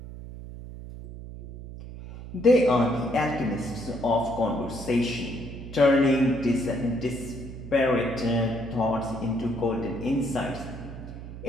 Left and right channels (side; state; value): right; noise; hum, 12 dB below the sound